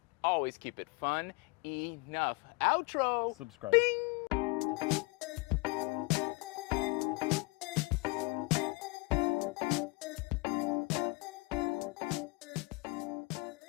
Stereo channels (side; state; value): right; quieter; 26.6 dB